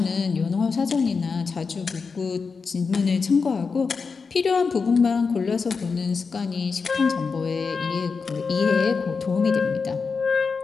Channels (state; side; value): quieter; right; 5.0 dB